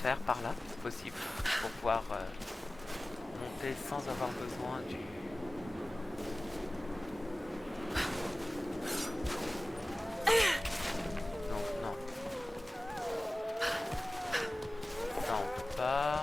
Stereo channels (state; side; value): normal; both; correlation 0.97